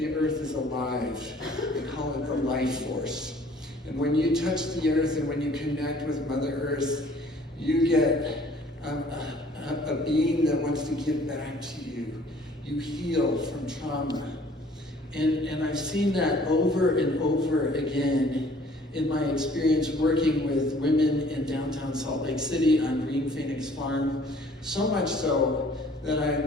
earth is alive. They call it the life force. And when you touch the earth and when you connect with Mother Earth, you get a being that wants to give back to you. You heal from trauma. And I've seen that over and over again in my experience working with women in downtown Salt Lake City on Green Phoenix Farm, so much so that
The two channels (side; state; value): both; normal; correlation 0.55